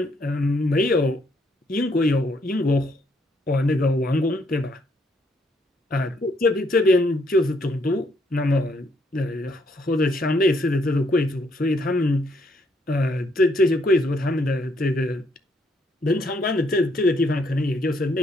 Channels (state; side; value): normal; both; correlation 0.71